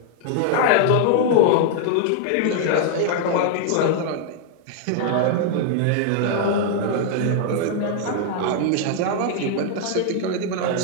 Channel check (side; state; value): both; different; correlation 0.00